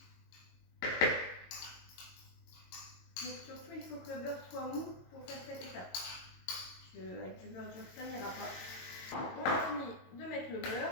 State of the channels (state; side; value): late; right; 22 ms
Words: Donc surtout il faut que le beurre soit mou pour faire cette étape. Avec du beurre dur ça n'ira pas. On a fini de mettre le